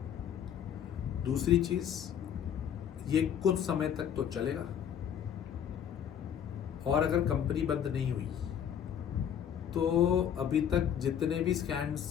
दूसरी चीज, ये कुछ समय तक तो चलेगा, और अगर कंपनी बंद नहीं हुई तो अभी तक जितने भी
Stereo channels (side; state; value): right; quieter; 9.0 dB